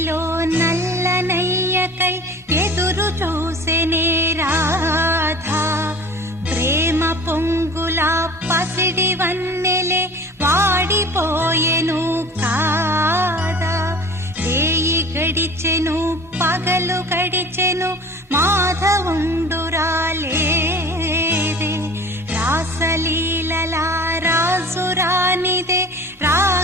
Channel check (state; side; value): normal; both; correlation 0.42